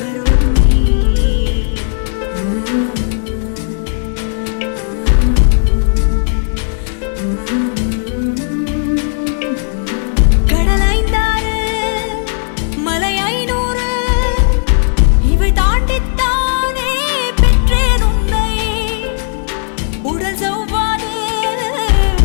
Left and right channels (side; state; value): right; silent; digital silence